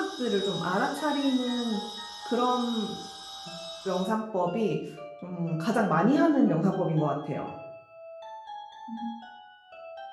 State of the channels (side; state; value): both; identical; correlation 1.00